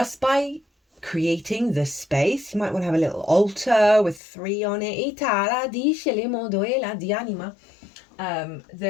by creating the space, you might want to have a little altar with 3 on it.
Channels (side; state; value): right; drops out; at 4.2 s